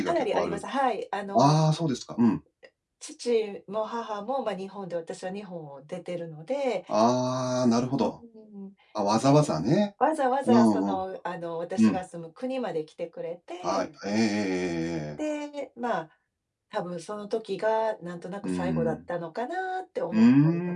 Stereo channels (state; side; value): identical; both; correlation 1.00